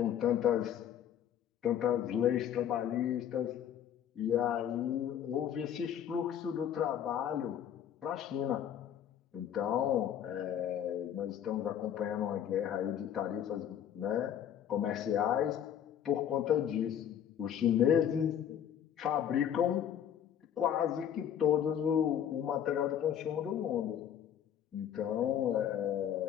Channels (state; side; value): quieter; right; 9.6 dB